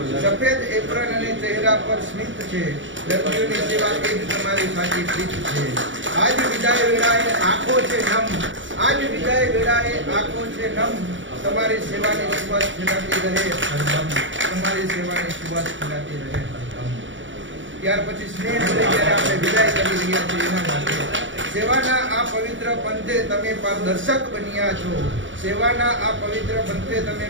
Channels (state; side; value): late; left; 0.56 ms